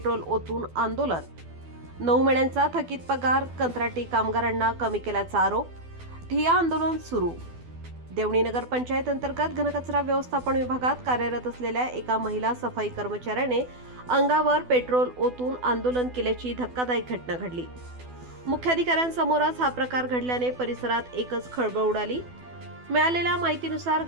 ओतून आंदोलन। 9 महिन्यांचा थकीत पगार, कंत्राटी कामगारांना कमी केल्याचा आरोप, ठिय्या आंदोलन सुरू। देवणी नगर पंचायत अंतर्गत घनकचरा व्यवस्थापन विभागात कार्यरत असलेल्या एका महिला सफाई कर्मचाऱ्याने अंगावर पेट्रोल ओतून आंदोलन केल्याची धक्कादायक घटना घडली। मुख्याधिकाऱ्यांसमोरच हा प्रकार घडल्याने परिसरात एकच खळबळ उडाली। मिळालेल्या माहितीनुसार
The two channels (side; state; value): left; late; 12 ms